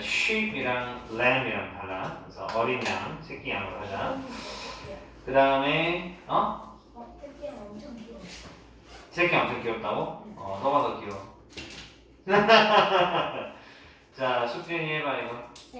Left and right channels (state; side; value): identical; both; correlation 1.00